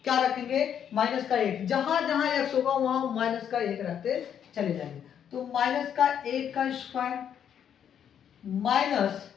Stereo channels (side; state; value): right; quieter; 8.8 dB